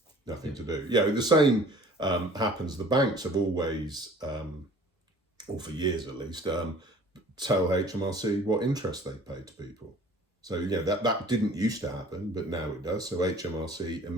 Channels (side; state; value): both; normal; correlation 0.50